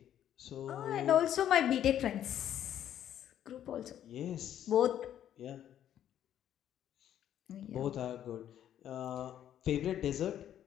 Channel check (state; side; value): quieter; right; 10.7 dB